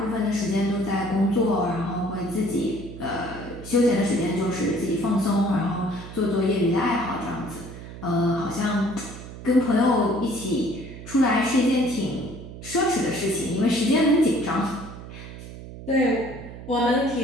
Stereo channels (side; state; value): right; noise; hum, 13 dB below the sound